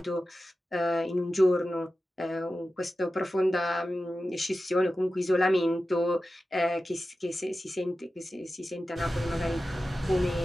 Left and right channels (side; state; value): both; normal; correlation 0.94